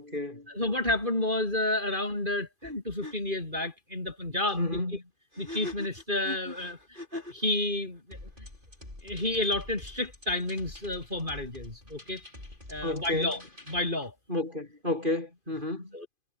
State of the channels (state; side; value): late; left; 2.5 ms